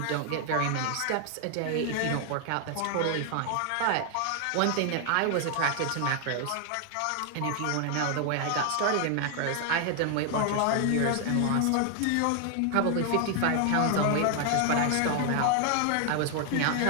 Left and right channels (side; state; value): both; different; correlation 0.00